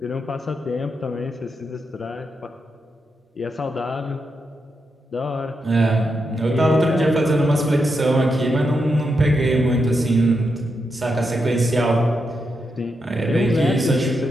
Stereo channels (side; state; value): both; normal; correlation 0.84